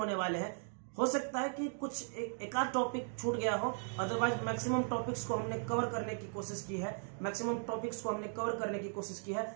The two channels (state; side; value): silent; left; 53 dB below the other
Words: वाले हैं। हो सकता है कि कुछ एक आध टॉपिक छूट गया हो, अदरवाइज मैक्सिमम टॉपिक्स को हमने कवर करने की कोशिश की है, मैक्सिमम टॉपिक्स को हमने कवर करने की कोशिश की है।